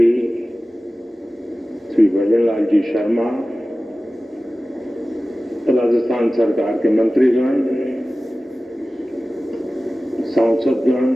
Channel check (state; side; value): normal; both; correlation 0.96